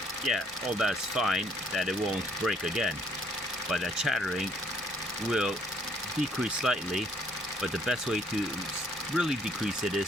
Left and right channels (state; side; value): normal; both; correlation 0.64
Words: yeah, all that's fine, that it won't break again. But that chattering will decrease slightly, but the best way to really decrease it